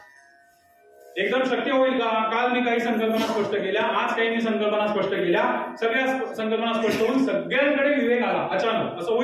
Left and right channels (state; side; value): identical; both; correlation 1.00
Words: एकदम शक्य होईल का? काल मी काही संकल्पना स्पष्ट केल्या, आज काही मी संकल्पना स्पष्ट केल्या, सगळ्या संकल्पना स्पष्ट होऊन सगळ्यांकडे विवेक आला अचानक, असं